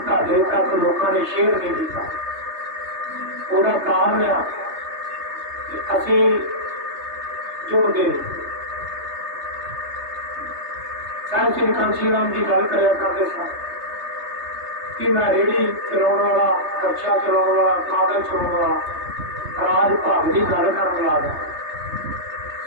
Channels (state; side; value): late; left; 3.3 ms